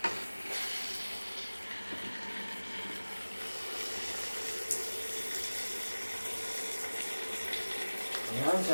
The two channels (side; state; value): both; inverted; correlation -1.00